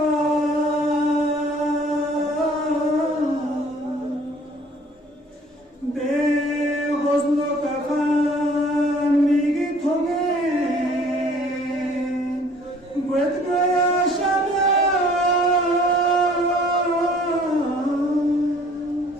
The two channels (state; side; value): normal; both; correlation 0.55